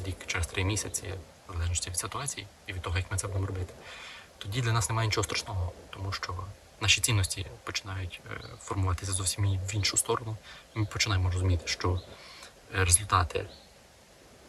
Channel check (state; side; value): identical; both; correlation 1.00